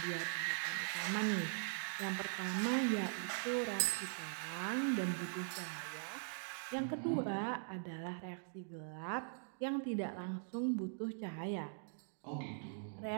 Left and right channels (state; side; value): silent; left; digital silence